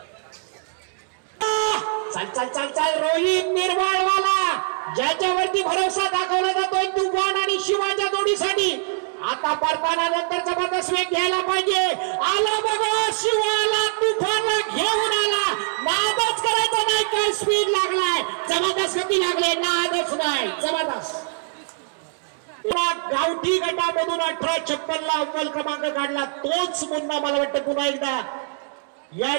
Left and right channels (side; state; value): left; silent; digital silence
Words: चल चल चल चल रोहित निर्वाळवाला ज्याच्यावरती भरोसा दाखवला जातोय तुफान आणि शिवाच्या जोडीसाठी. आता परताना नंतर जबरदस्त वेग घ्यायला पाहिजे. आला बघा शिवाला तुफानला घेऊन आला. नादच करायचा नाही. काय स्पीड लागलाय. जबरदस्त गती लागले. नादच नाही. जबरदस्त गावठी गटामधून 1856 ला अव्वल क्रमांक काढला. तोच मुन्ना मला वाटतं पुन्हा एकदा या